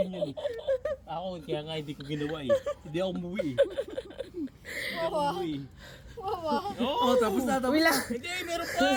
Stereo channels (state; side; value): identical; both; correlation 1.00